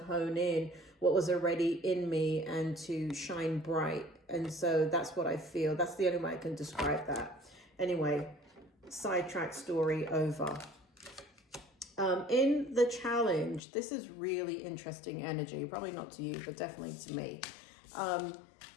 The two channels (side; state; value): right; drops out; at 13.6 s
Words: in what was already in me and to shine bright. And so that's what I feel. That's the only way I can describe that. Anyway, sidetrack story over. In the challenge, this is really interesting energy. Probably not to you, but definitely to me.